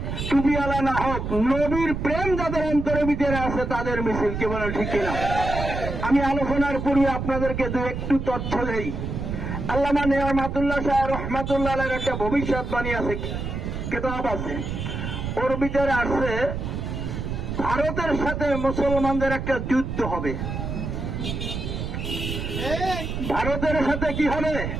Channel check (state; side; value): noise; right; rumble, 4 dB below the sound